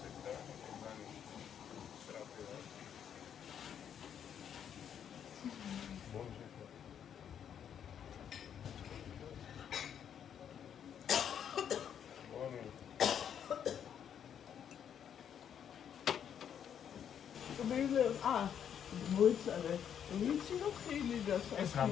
მოიცადე ვიცი რომ ხილი და ეს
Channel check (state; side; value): quieter; right; 8.7 dB